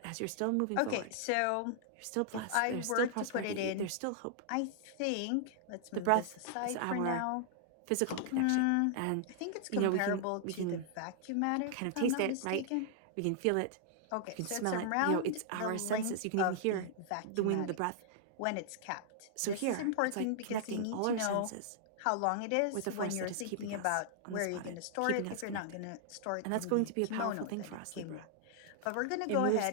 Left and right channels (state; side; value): different; both; correlation -0.01